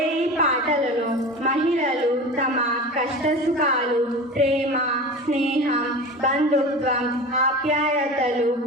ఈ పాటలను మహిళలు తమ కష్టసుఖాలు, ప్రేమ, స్నేహం, బంధుత్వం, ఆప్యాయతలు,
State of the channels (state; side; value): normal; both; correlation 0.32